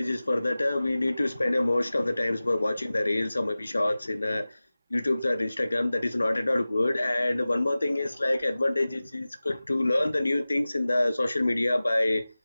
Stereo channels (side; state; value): both; inverted; correlation -0.97